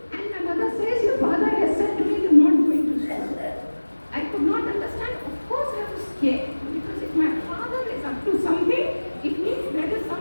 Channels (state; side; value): inverted; both; correlation -1.00